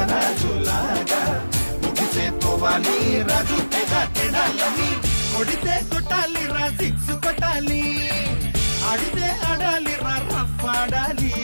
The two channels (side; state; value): both; inverted; correlation -1.00